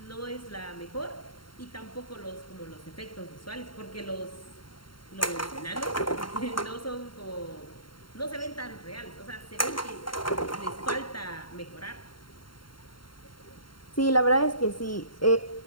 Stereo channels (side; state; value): right; late; 0.73 ms